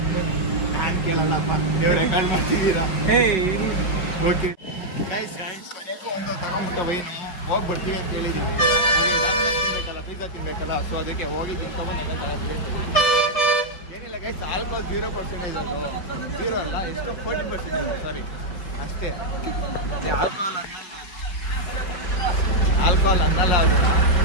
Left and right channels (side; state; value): right; late; 5.3 ms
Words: ನಾನು ಕೇಳಲ್ಲಪ್ಪ, ನೀವು ರೆಕಾರ್ಡ್ ಮಾಡ್ತಿದ್ದೀರಾ? ಓಕೆ ಗೈಸ್, ಮನೆಗೂ ಒಂದು ತಗೊಂಬಿಟ್ಟ ವೈನು ಹೋಗಿ ಬರ್ತೀವಿ ಅಂತ ಹೇಳಿದ್ದೀವಿ. ತಿನ್ಬೇಕಲ್ಲ, ಪಿಜ್ಜಾ ತಿನ್ಬೇಕಲ್ಲ, ಸೊ ಅದಕ್ಕೆ ಹೋಗಿ ತಿನ್ಕೊಂಡು ನೆನೆ ತಗೋತೀವಿ. ಏನಿಲ್ಲ ಗೈಸ್, ಆಲ್ಕೋಹಾಲ್ 0% ಅದು. 0 ಅಲ್ಲ, ಎಷ್ಟು 40%, ಸಾರಿ ಅಷ್ಟೇ. ಆಲ್ಕೋಹಾಲ್ ಅನ್ನಲ್ಲ ಅದು.